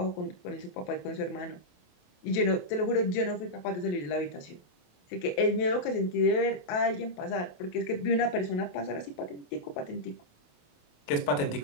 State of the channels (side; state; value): right; late; 28 ms